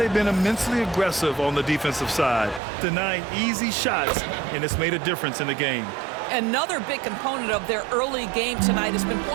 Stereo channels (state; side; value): drops out; left; at 2.6 s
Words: been immensely aggressive on the defensive side, denying easy shots, and it's made a difference in the game. Another big component of their early game tonight has been